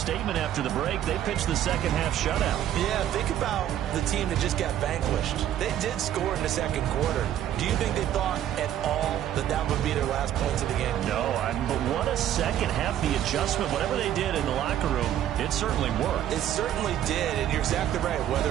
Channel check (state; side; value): quieter; left; 11.3 dB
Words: after the break. They pitched the second half shutout. Yeah, think about the team that just got vanquished. They did score in the second quarter. Do you think they thought at all that that would be their last points of the game? No, but what a second half. The adjustment, whatever they did in the locker room, it certainly worked. It certainly did, and you're exactly right. Whether